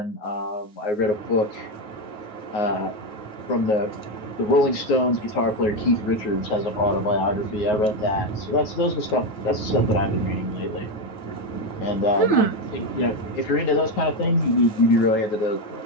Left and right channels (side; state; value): right; late; 9.5 ms